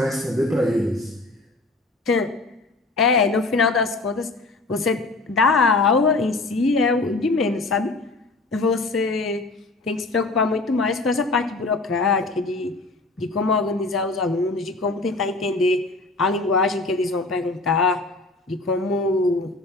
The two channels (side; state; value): right; quieter; 3.3 dB